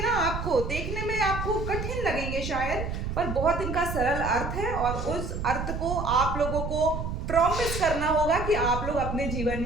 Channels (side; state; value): right; noise; rumble, 4 dB below the sound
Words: ना, आपको देखने में आपको कठिन लगेंगे शायद, पर बहुत इनका सरल अर्थ है और उस अर्थ को आप लोगों को प्रॉमिस करना होगा कि आप लोग अपने जीवन